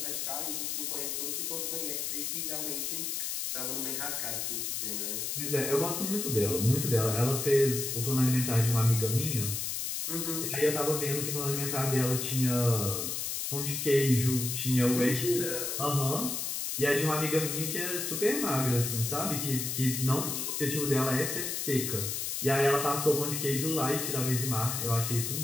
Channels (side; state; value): left; noise; hiss, 2 dB below the sound